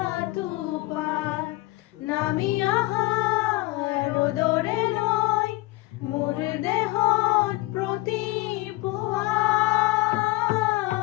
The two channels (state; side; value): quieter; right; 19.9 dB